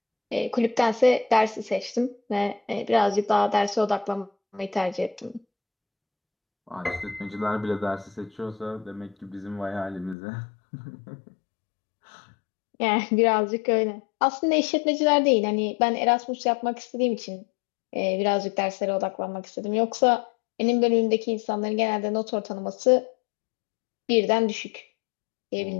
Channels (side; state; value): right; drops out; at 10.2 s